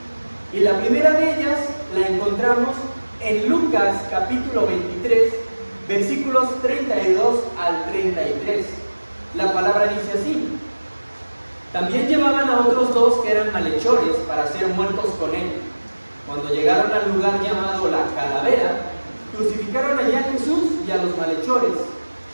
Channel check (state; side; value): inverted; both; correlation -1.00